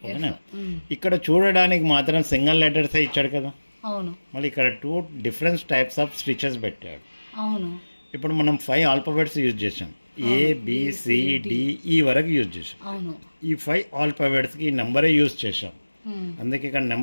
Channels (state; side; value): inverted; both; correlation -1.00